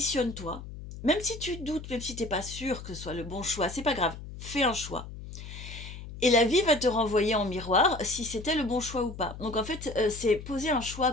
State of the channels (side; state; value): left; noise; hum, 12 dB below the sound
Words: même si tu doutes, même si tu n'es pas sûr que ce soit le bon choix, c'est pas grave, fais un choix. Et la vie va te renvoyer en miroir si c'était le bon choix ou pas. Donc en fait, c'est poser un choix